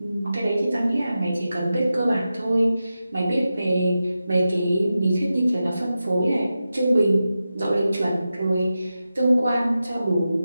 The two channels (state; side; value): inverted; both; correlation -0.92